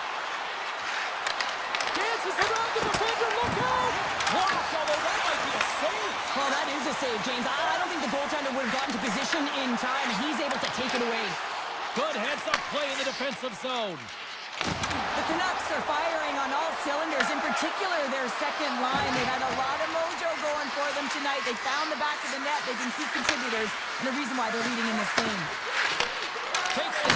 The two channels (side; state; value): both; identical; correlation 1.00